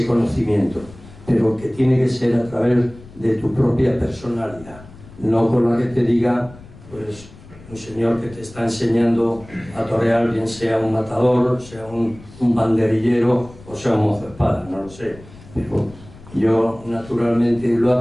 conocimiento, pero que tiene que ser a través de tu propia personalidad, no con la que te diga pues un señor que te está enseñando a torear, bien sea un matador, sea un banderillero o sea un mozo de espada, no lo sé, pero yo naturalmente lo he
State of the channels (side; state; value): left; noise; rumble, 20 dB below the sound